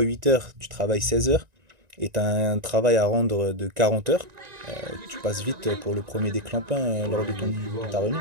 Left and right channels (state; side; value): late; left; 1.9 ms